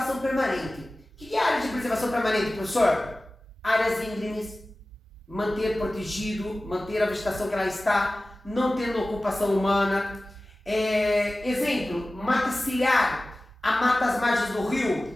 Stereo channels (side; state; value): both; normal; correlation 0.97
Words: permanente. O que é área de preservação permanente, professor? Áreas íngremes, manter protegido, manter a vegetação que ela está, não tendo ocupação humana. Exemplo, mata ciliar, a mata às margens do